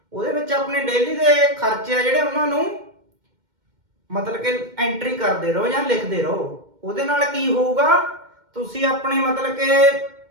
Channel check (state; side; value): late; left; 2.1 ms